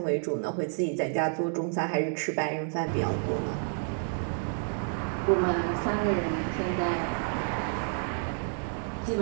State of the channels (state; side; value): silent; left; 58 dB below the other